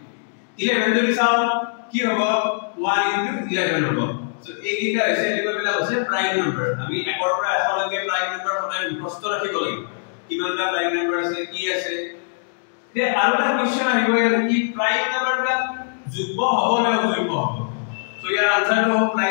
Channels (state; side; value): silent; right; digital silence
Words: 11 যদি চাও কি হ'ব 1 * 11 হ'ব সো এইকেইটা হৈছে এনেকুৱা হৈছে প্ৰাইম নাম্বাৰ আমি একৰ পৰা এশলৈকে প্ৰাইম নাম্বাৰ সদায় মুখস্থ ৰাখিব লাগিব কিমানটা প্ৰাইম নাম্বাৰ আছে কি আছে তে আৰু এটা কোৱেশ্চন আহিব ইয়াত কি প্ৰাইম নাম্বাৰবিলাক যুগ্ম হ'ব নে অযুগ্ম হ'ব সো ইয়াৰ আনসাৰটো হ'ব